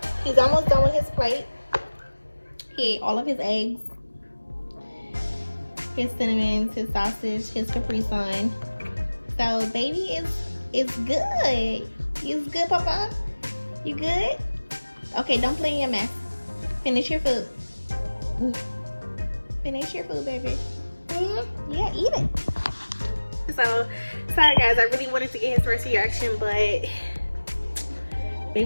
he's almost done with his plate. He ate all of his eggs, his cinnamons, his sausage, his Capri Sun. So baby is good. You good, Papa? You good? Okay, don't play in your mess. Finish your food. Finish your food, baby. Yeah, eat it. So sorry guys, I really wanted to get his first reaction, but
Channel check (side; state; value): both; inverted; correlation -1.00